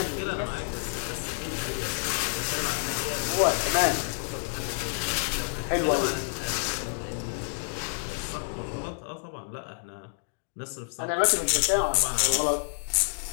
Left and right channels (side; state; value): right; silent; digital silence